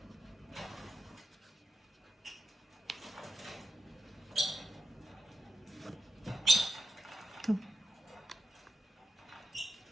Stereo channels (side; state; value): both; normal; correlation 0.88